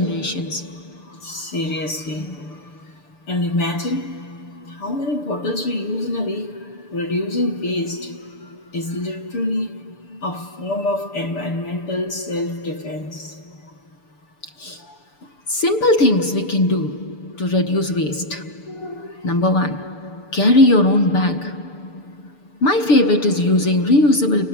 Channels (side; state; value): right; late; 6.8 ms